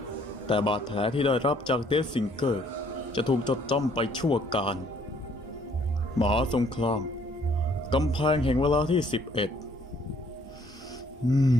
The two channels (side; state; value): both; normal; correlation 0.63